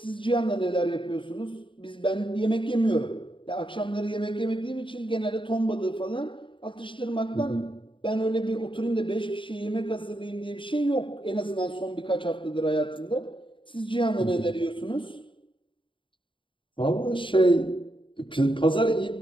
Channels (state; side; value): late; right; 0.24 ms